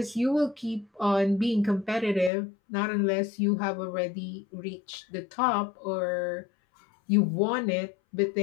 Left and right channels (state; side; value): drops out; right; at 2.3 s